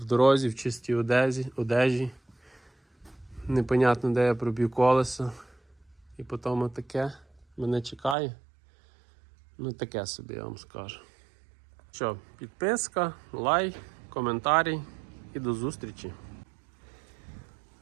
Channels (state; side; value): drops out; left; at 8.2 s